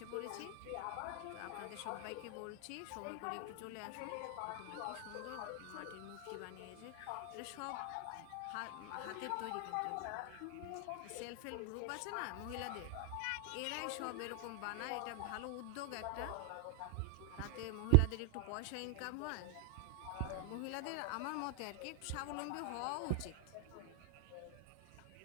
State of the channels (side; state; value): both; different; correlation 0.00